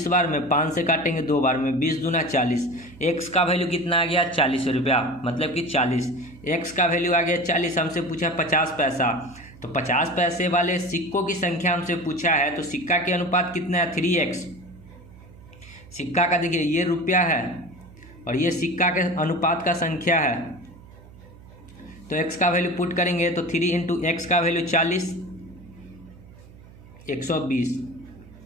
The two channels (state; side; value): noise; right; hum, 21 dB below the sound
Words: बार में 5 से काटेंगे 2 बार में, 20 दूना 40। x का वैल्यू कितना आ गया, 40 रुपया, मतलब कि 40। x का वैल्यू आ गया 40। हमसे पूछा 50 पैसा, तो 50 पैसे वाले सिक्कों की संख्या हमसे पूछा है, तो सिक्का के अनुपात कितना है, 3x। सिक्का का देखिए ये रुपया है और ये सिक्का के अनुपात का संख्या है, तो x का वैल्यू पुट करेंगे तो 3 इंटू एक्स का वैल्यू 40, 120।